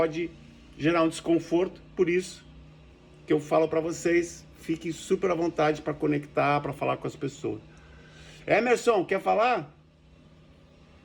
gerar um desconforto. Por isso que eu falo para vocês, fiquem super à vontade para conectar, para falar com as pessoas. Emerson, quer falar?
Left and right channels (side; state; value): both; identical; correlation 1.00